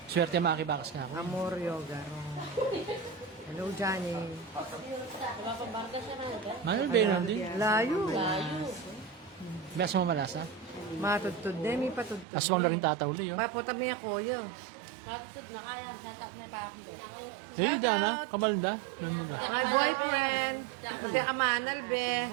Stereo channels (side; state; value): left; drops out; at 12.2 s